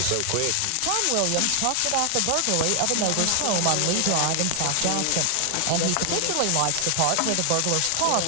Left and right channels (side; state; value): both; different; correlation 0.00